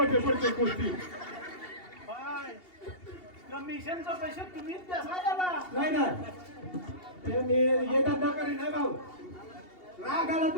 पडते गोष्टी कमिशनचा पैसे तुम्हीच द्या नाही ना ते मी येतात नकारी नाही भाऊ राग आला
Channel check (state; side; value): late; right; 2.8 ms